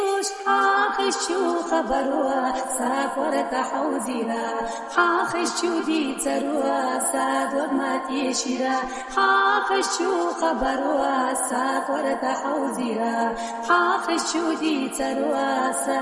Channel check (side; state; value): both; identical; correlation 1.00